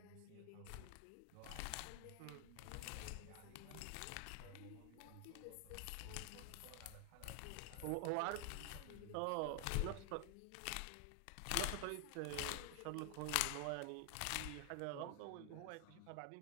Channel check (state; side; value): different; both; correlation 0.00